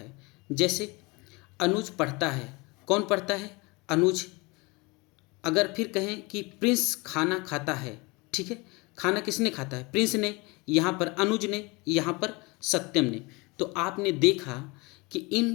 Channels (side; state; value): right; quieter; 26.1 dB